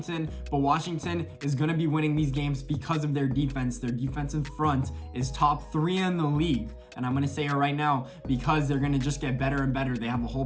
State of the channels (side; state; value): both; identical; correlation 1.00